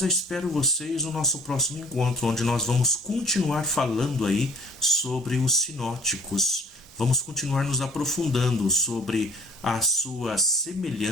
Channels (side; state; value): both; normal; correlation 0.52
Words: eu espero vocês no nosso próximo encontro, onde nós vamos continuar falando aí sobre os sinóticos. Vamos continuar nos aprofundando sobre as suas